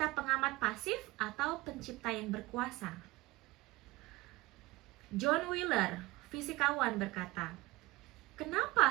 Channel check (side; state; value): left; quieter; 20.5 dB